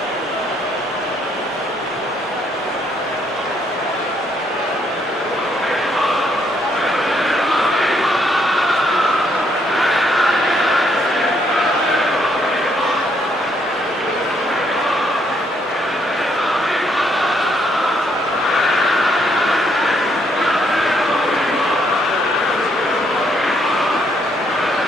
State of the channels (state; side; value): normal; both; correlation 0.71